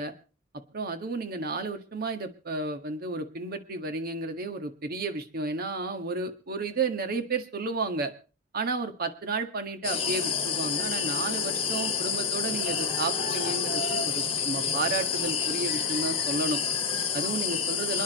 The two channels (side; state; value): both; normal; correlation -0.01